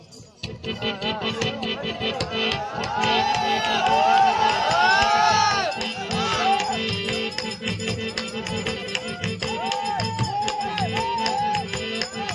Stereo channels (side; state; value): both; identical; correlation 1.00